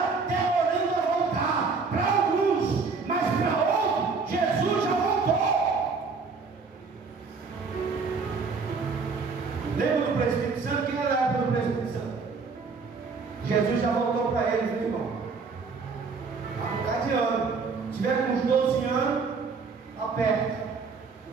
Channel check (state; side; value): quieter; left; 4.7 dB